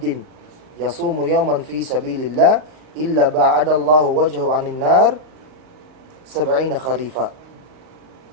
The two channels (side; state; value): left; late; 39 ms